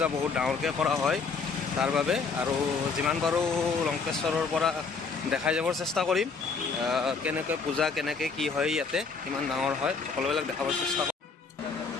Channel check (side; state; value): right; quieter; 4.8 dB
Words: বহুত ডাঙৰকৈ কৰা হয় তাৰ বাবে। আৰু যিমান পাৰোঁ লংকেশ্বৰৰ পৰা দেখাই যাবৰ চেষ্টা কৰিম, কেনেকৈ পূজা কেনেকৈ কি হয়, ইয়াতে কিমান ডাঙৰ হয়, সকলোবিলাক দেখাবৰ চেষ্টা কৰিম।